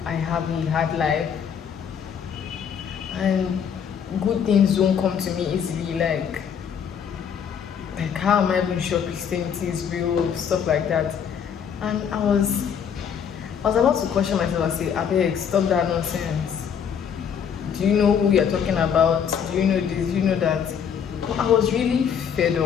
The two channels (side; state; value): right; quieter; 7.7 dB